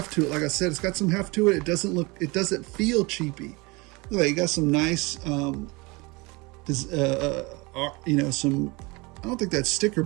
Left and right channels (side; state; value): left; quieter; 25.7 dB